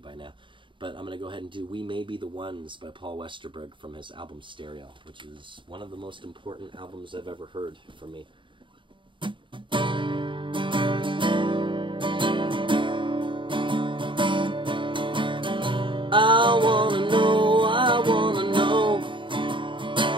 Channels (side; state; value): left; late; 0.24 ms